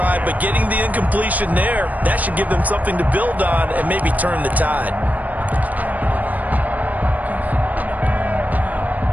but getting the incompletion there, that should give them something to build on and maybe turn the tide.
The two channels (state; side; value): late; left; 0.076 ms